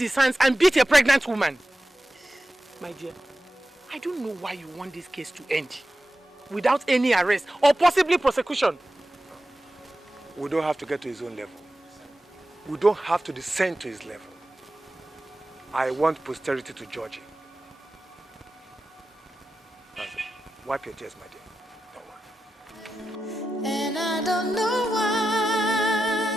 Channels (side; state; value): both; normal; correlation 0.92